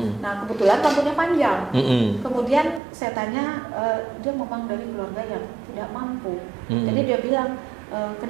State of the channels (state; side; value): drops out; left; at 2.8 s